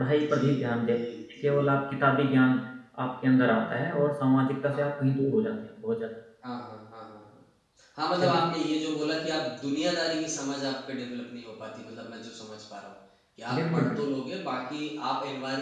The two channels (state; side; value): identical; both; correlation 1.00